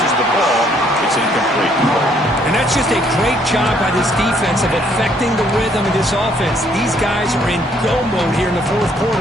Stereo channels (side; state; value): both; normal; correlation 0.66